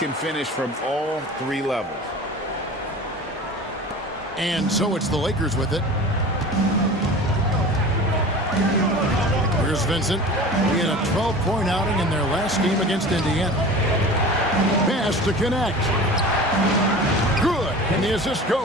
finish from all 3 levels. And so it's the Lakers with it. Here's Vincent. He had a 12-point outing in their last game against Indiana. Pass to connect. Good. And the assist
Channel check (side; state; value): both; normal; correlation 0.37